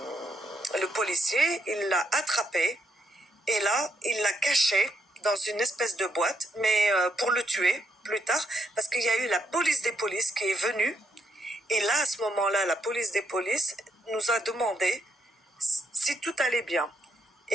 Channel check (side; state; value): both; normal; correlation 0.77